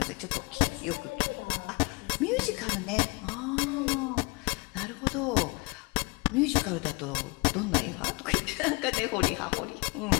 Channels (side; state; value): right; quieter; 27.6 dB